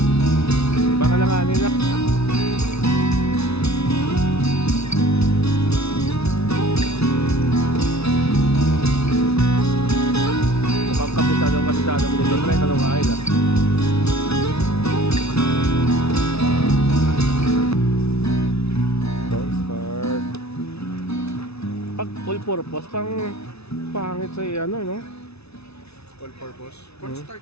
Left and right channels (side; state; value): right; late; 0.80 ms